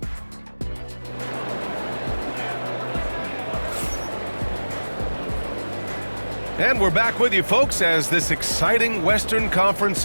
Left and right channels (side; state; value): both; inverted; correlation -1.00